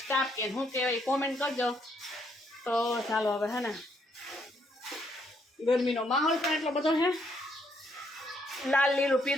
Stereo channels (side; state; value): both; normal; correlation 0.73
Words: સ્ટાફ કહે શું કહેવાય કોમેન્ટ કરજો. તો ચાલો હવે હે ને ગરમીનો માહોલ પણ એટલો બધો છે. લાલ લીલું